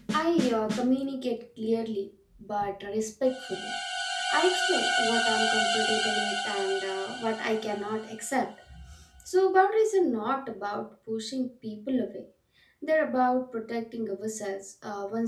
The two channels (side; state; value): both; identical; correlation 1.00